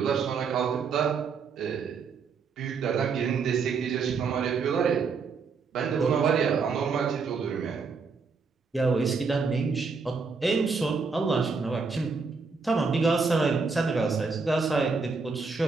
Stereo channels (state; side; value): quieter; left; 5.0 dB